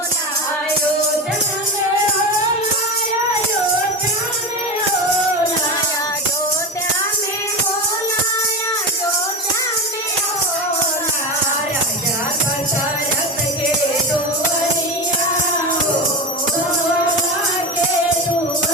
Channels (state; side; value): normal; both; correlation 0.21